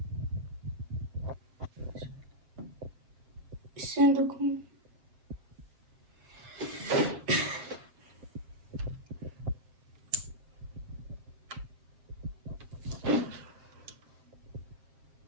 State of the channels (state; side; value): late; left; 7.5 ms